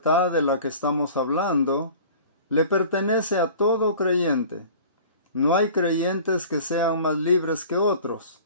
de la que estamos hablando le pertenece a todo creyente. No hay creyentes que sean más libres que otros.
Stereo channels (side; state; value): both; inverted; correlation -0.44